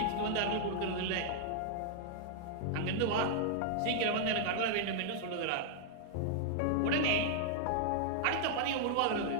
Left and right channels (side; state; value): both; different; correlation -0.01